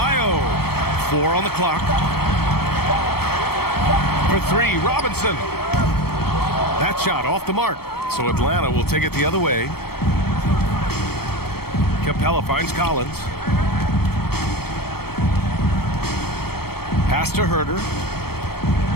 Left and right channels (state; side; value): late; right; 0.95 ms